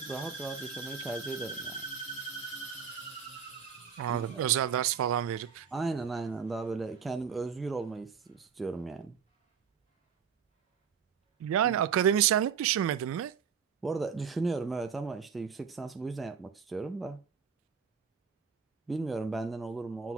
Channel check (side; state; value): left; quieter; 7.0 dB